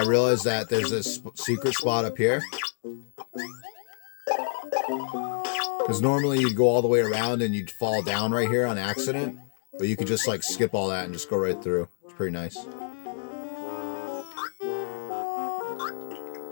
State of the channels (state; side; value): silent; right; digital silence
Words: realized that there's this secret spot up here. Because normally you'd go all the way around and you'd fall down right here on accident, but you could just like skip all that and just go right through. It's pretty nice.